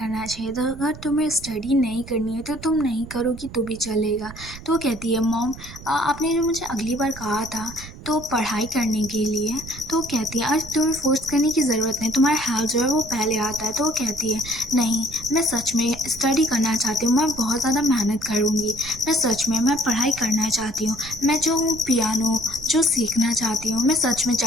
चाहिए था, अगर तुम्हें स्टडी नहीं करनी है तो तुम नहीं करोगी तो भी चलेगा। तो वो कहती है मॉम आपने जो मुझे अगली बार कहा था तो पढ़ाई करने के लिए तो वो कहती है आज तुम्हें फ़ोर्स करने की ज़रूरत नहीं, तुम्हारा हेल्थ जो है वो पहले आता है। तो वो कहती है नहीं, मैं सच में स्टडी करना चाहती हूँ, मैं बहुत ज़्यादा मेहनत करूँगी, मैं सच में मैं पढ़ाई करना चाहती हूँ, मैं जो हूँ पियानो जो सीखना चाहती हूँ, मैं सच में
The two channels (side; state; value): right; noise; rumble, 15 dB below the sound